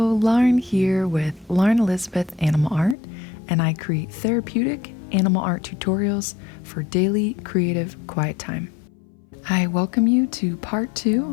Lauren here with Lauren Elizabeth Animal Art, and I create therapeutic animal art tutorials for daily creative quiet time. I welcome you to part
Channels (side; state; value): right; drops out; at 3.0 s